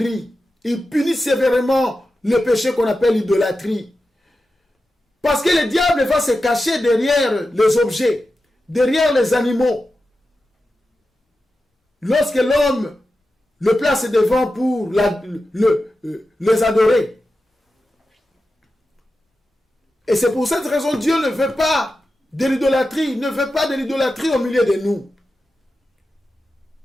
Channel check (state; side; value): normal; both; correlation 0.92